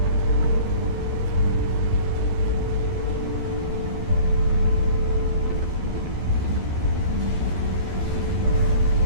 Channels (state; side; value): late; left; 12 ms